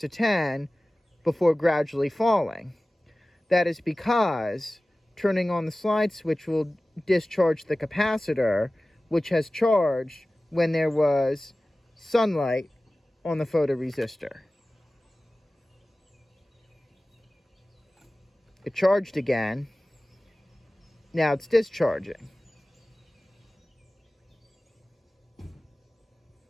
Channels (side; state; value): both; normal; correlation 0.97